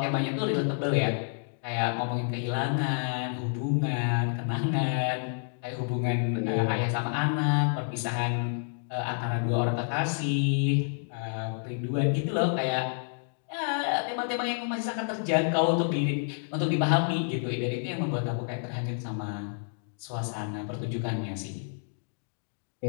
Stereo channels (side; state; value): right; silent; digital silence